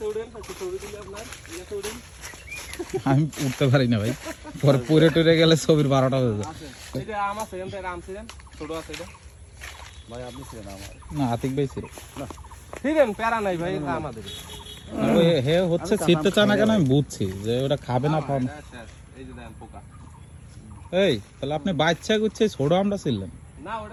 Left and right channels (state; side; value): identical; both; correlation 1.00